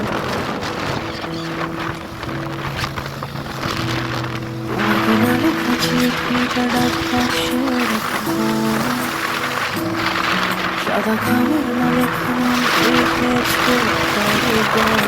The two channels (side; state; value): both; identical; correlation 1.00